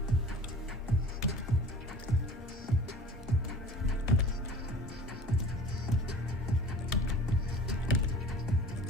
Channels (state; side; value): normal; both; correlation 0.43